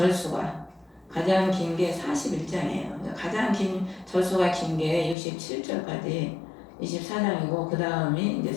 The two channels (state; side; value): drops out; right; at 5.2 s